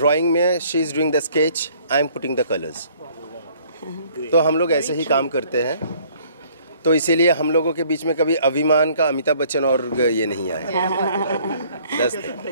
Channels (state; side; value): inverted; both; correlation -0.59